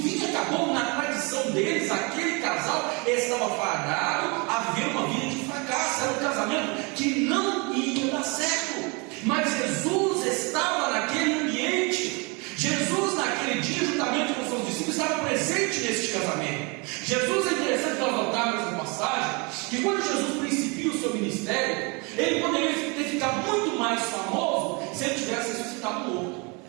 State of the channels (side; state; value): left; quieter; 30.0 dB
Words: vinho acabou, na tradição deles, aquele casal estava fadado a viver uma vida de fracasso. Era um casamento que não ia dar certo. Mas Jesus estava naquele ambiente. Jesus naquele dia, juntamente com seus discípulos, estava presente neste casamento. Jesus, é interessante nós notarmos nessa passagem, que quando Jesus principia o seu ministério, ele poderia ter ficado muito mais famoso se ele tivesse ressuscitado morto.